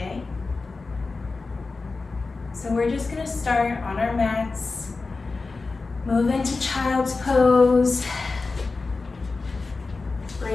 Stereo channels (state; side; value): quieter; right; 3.9 dB